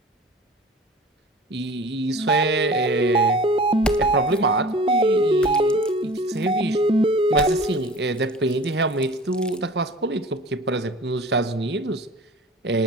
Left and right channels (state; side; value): normal; both; correlation 0.41